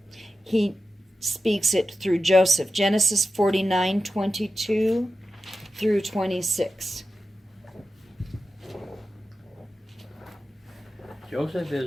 he speaks it through Joseph. Genesis 49:22 through 26. Joseph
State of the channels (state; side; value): normal; both; correlation 0.92